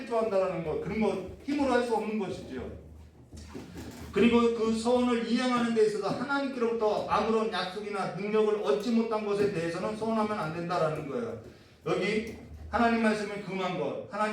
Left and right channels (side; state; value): both; identical; correlation 1.00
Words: 한다라는 것, 그런 거 힘으로 할 수 없는 것이죠. 그리고 그 서원을 이행하는 데 있어서 하나님께로부터 아무런 약속이나 능력을 얻지 못한 것에 대해서는 서원하면 안 된다라는 거예요. 여기 하나님 말씀에 금한 것,